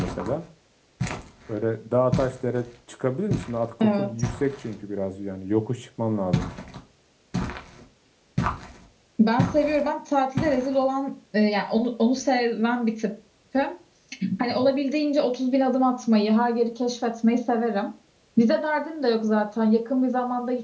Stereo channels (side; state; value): both; identical; correlation 1.00